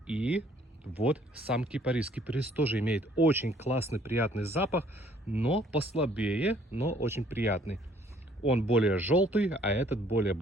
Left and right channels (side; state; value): both; normal; correlation 0.61